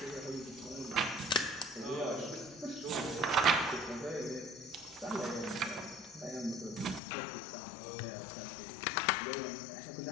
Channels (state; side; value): drops out; right; at 7.0 s